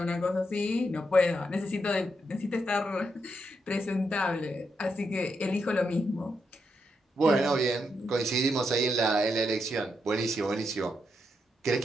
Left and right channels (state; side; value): normal; both; correlation 0.82